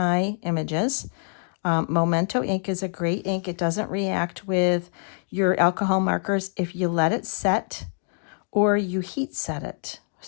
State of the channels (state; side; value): silent; right; 58 dB below the other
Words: images. Memento ink is a great ink. It doesn't react with your alcohol markers if you let it set or you heat set it.